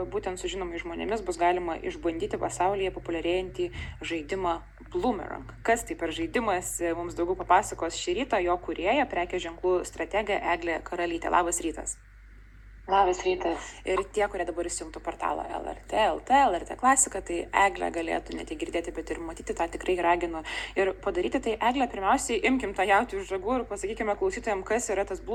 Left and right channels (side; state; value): both; identical; correlation 1.00